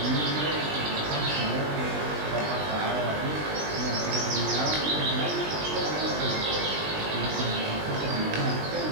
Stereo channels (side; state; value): left; late; 20 ms